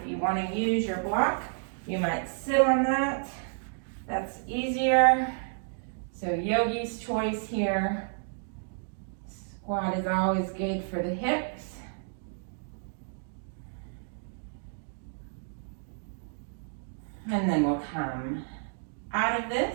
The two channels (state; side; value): silent; left; digital silence